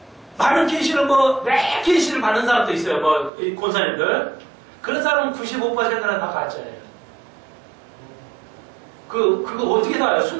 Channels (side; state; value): left; drops out; at 3.3 s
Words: 많은 계시를 매 계시를 받는 사람도 있어요. 이 권사님들. 그런 사람은 95%는 다 가짜예요. 그거 어떻게 다 알아요?